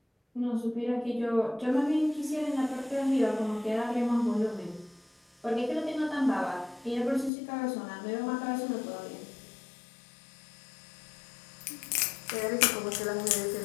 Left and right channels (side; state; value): right; drops out; at 7.3 s